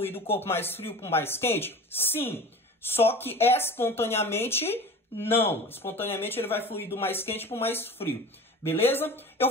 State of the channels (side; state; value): both; normal; correlation 0.36